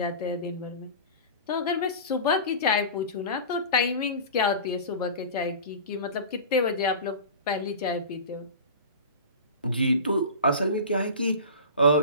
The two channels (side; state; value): both; inverted; correlation -0.33